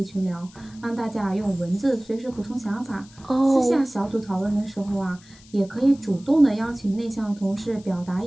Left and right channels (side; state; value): left; noise; hiss, 25 dB below the sound